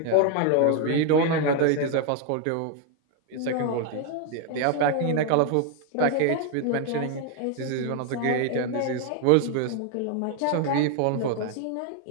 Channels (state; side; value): different; both; correlation 0.01